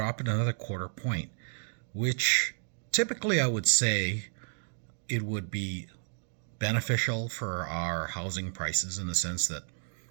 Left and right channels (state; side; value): silent; left; digital silence